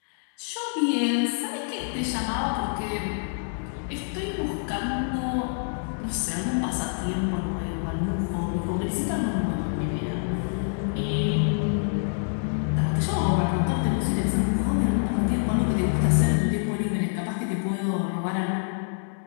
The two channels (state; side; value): silent; right; digital silence